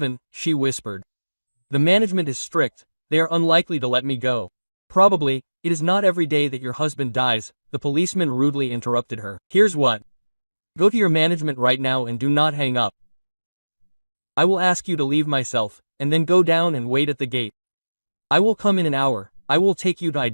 she whispered. The management is strict, they are unlikely to let me go. Probably, it is not every day that your husband dies, the policeman rudely interrupted her. Here's what. Go to your management right now and do not hang up. I will ask you to leave myself, and then go down and wait at the gate. I will come in an hour, I will take you to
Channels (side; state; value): both; inverted; correlation -1.00